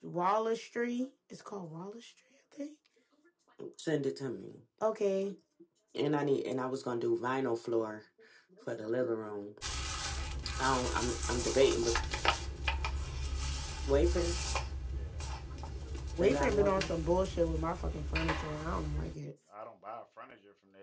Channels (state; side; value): identical; both; correlation 1.00